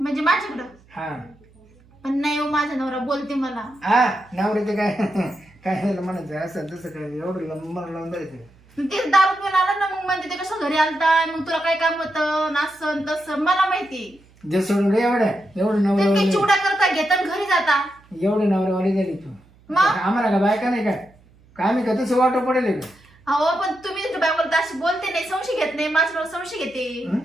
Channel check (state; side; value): noise; right; hum, 29 dB below the sound